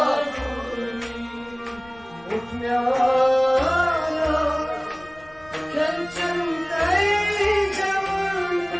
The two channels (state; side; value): noise; left; rumble, 25 dB below the sound